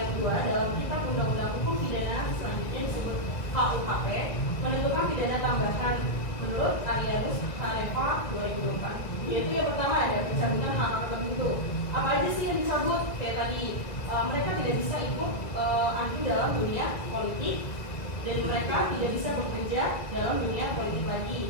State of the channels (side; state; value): right; late; 1.7 ms